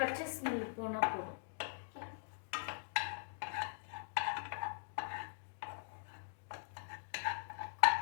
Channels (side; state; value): right; silent; digital silence